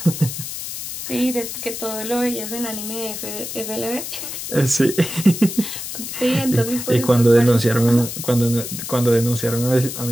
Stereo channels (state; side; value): noise; left; hiss, 7 dB below the sound